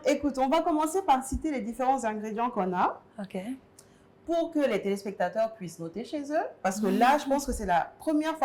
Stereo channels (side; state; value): both; identical; correlation 1.00